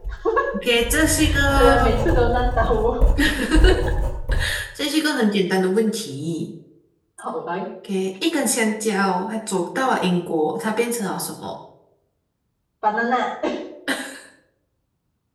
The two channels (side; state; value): both; identical; correlation 1.00